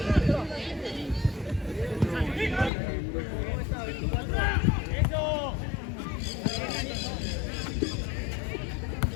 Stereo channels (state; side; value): drops out; right; at 2.7 s